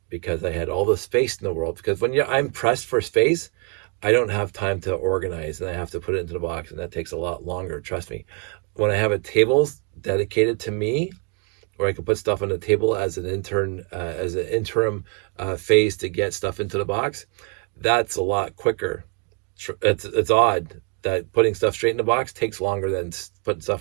because I had all the space in the world. Because when I'm pressed for space, I don't have time to organize, and I have to put it into the box, and that takes a lot longer, trust me. When I have a table dedicated to me, where I can put stuff on the table as an interim phase to get stuff into the box, that's a lot quicker. It's odd that putting stuff straight in the box takes longer than putting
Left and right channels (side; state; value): left; quieter; 38.5 dB